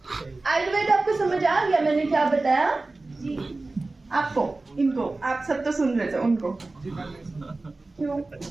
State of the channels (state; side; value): quieter; left; 3.3 dB